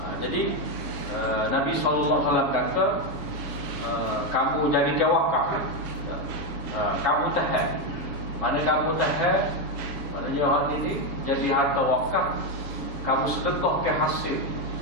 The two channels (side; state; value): left; late; 7.1 ms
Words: Jadi Nabi SAW kata, kamu jadi tawakal, kamu tahan. Mana kamu tahan, maknanya orang ini jadi harta wakaf, kamu sedekah ke hasil.